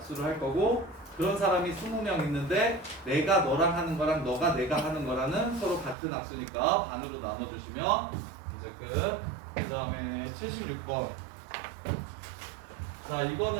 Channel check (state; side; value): drops out; left; at 6.0 s